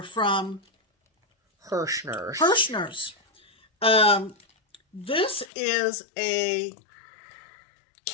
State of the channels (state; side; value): drops out; right; at 5.5 s